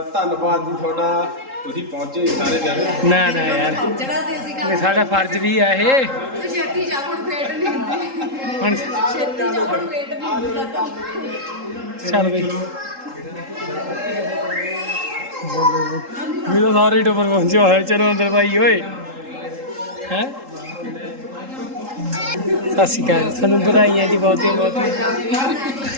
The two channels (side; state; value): left; late; 3.8 ms